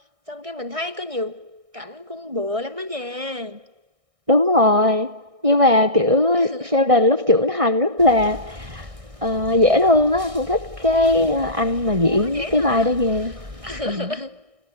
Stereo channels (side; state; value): left; late; 1.6 ms